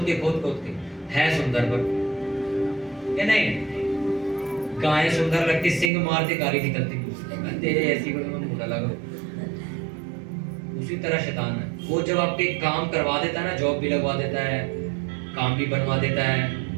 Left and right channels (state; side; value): drops out; left; at 5.9 s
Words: के। है सुंदर पर क्या नहीं? गाय सुंदर लगती, सिंग मारती गाली निकलती, तेरे ऐसी को मुंह लगा। उसी तरह शैतान है, वो जब आपके काम करवा देता है ना, जॉब भी लगवा देता है, काम भी बनवा देता